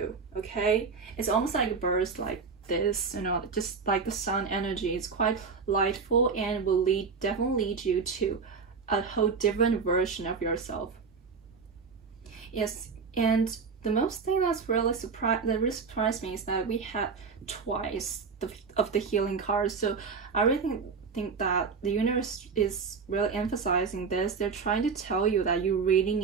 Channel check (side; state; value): left; quieter; 5.3 dB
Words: Okay, it's almost like a burst this, just like the sun energy. It's quite lightful and will definitely lead you to a whole different version of yourself. Yes, and the most thing that really surprised me is that we had twice the healing cards. So I really think that the universe is really emphasizing this. They're trying to tell you that you really